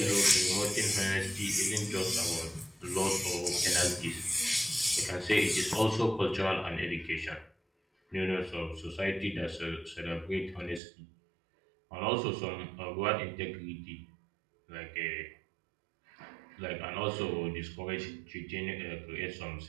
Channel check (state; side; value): drops out; left; at 10.8 s